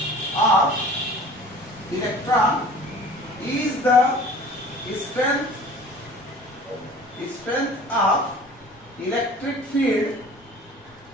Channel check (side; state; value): both; normal; correlation 0.45